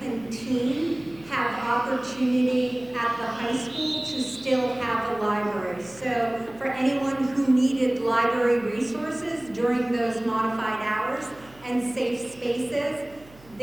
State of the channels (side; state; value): right; noise; hum, 25 dB below the sound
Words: and teen have opportunity at the high school to still have a library. So for anyone who needed library resources during those modified hours and safe spaces,